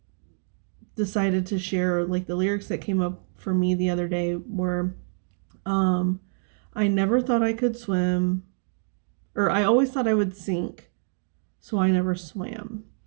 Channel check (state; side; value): silent; left; 61 dB below the other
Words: decided to share like the lyrics that came up for me the other day were I never thought I could swim, or I always thought I would sink, so I never swam.